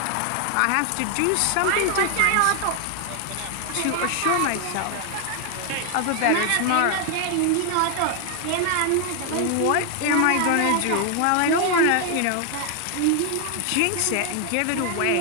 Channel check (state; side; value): different; both; correlation 0.00